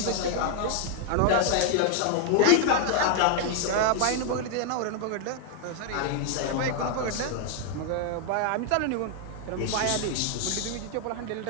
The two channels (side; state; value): both; different; correlation 0.00